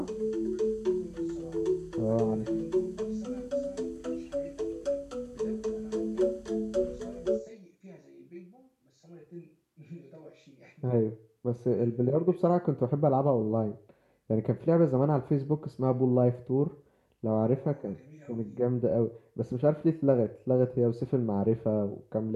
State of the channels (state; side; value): identical; both; correlation 1.00